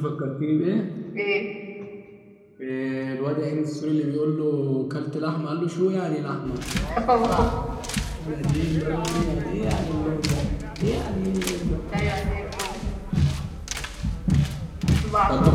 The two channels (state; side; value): identical; both; correlation 1.00